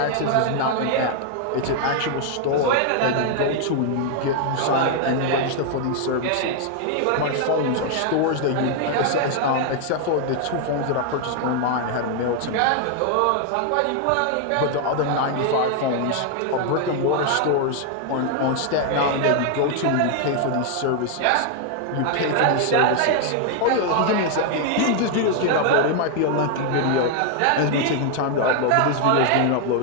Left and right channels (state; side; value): different; both; correlation 0.00